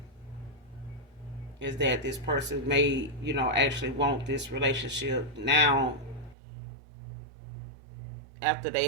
Is that this person may, actually want this relationship now after they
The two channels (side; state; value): left; drops out; at 6.4 s